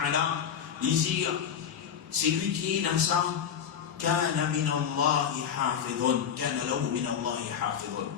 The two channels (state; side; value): quieter; right; 8.2 dB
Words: dit c'est lui qui est dans ça. Kana min Allah hafidun, kana lahu min Allah hafidun.